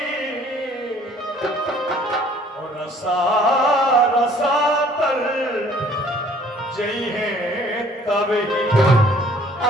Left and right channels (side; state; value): both; normal; correlation 0.57